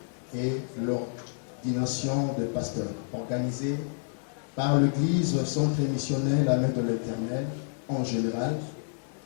et l'ordination de pasteurs, organisée par l'Église Centre Missionnaire La Main de l'Éternel en général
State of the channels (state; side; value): silent; right; 59 dB below the other